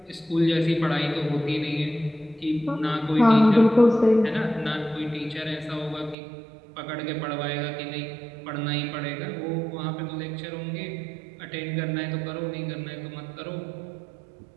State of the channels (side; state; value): left; drops out; at 6.2 s